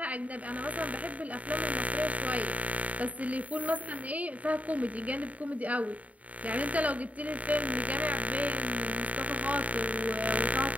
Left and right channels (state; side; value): late; left; 0.070 ms